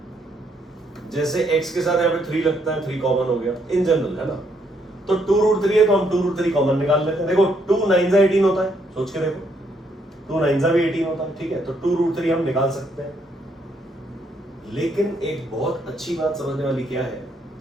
जैसे x के साथ यहाँ पे 3 लगता है, 3 कॉमन हो गया इन जनरल, है ना। तो 2 रूट 3 है तो हम 2 रूट 3 कॉमन निकाल लेते हैं। देखो 2 9 18 होता है, सोच के देखो, 2 9 भी 18 होता है, ठीक है। तो 2 रूट 3 हम निकाल सकते हैं। लेकिन एक बहुत अच्छी बात समझने वाली क्या है,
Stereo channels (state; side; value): normal; both; correlation 0.73